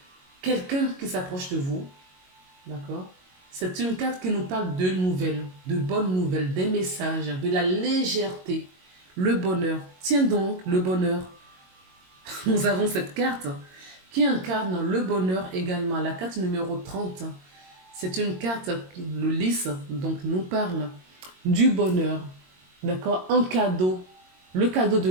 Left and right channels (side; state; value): left; late; 22 ms